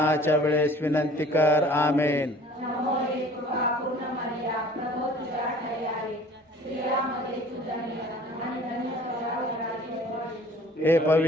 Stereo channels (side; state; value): both; normal; correlation 0.49